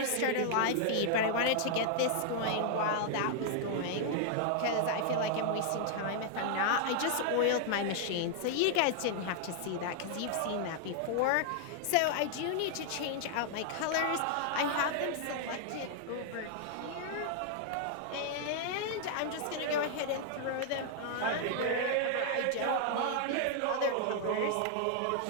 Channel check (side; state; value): both; different; correlation 0.00